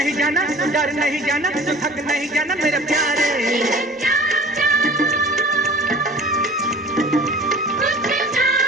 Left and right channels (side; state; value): both; normal; correlation 0.43